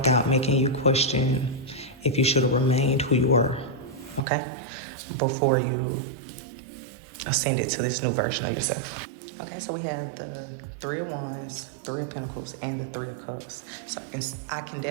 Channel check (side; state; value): left; drops out; at 4.2 s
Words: making you question if you should have remained who you were, okay? Before you ascended to this new version of yourself. Okay, so we have the 3 of Wands, 3 of Pentacles, and the 3 of Cups. So I can